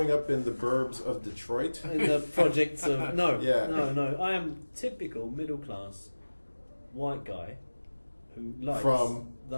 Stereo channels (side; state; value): both; inverted; correlation -1.00